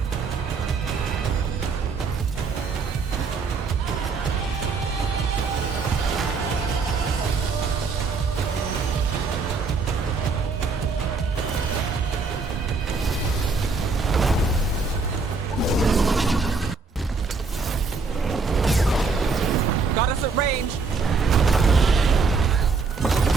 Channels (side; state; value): left; quieter; 4.5 dB